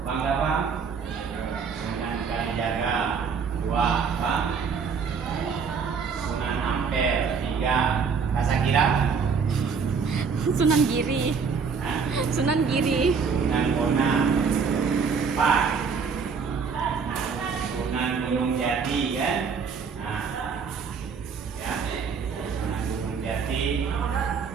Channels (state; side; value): quieter; left; 5.8 dB